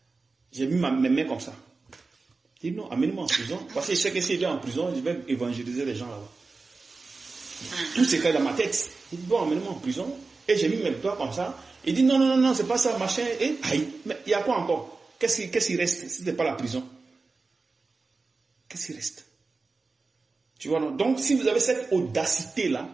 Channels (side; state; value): left; quieter; 3.9 dB